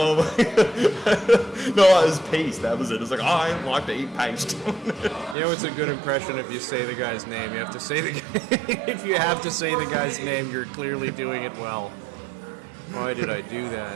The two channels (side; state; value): left; drops out; at 5.4 s